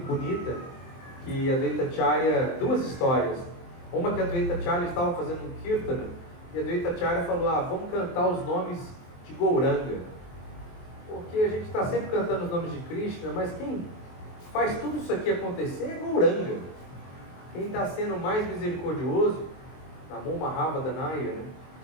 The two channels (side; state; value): right; late; 23 ms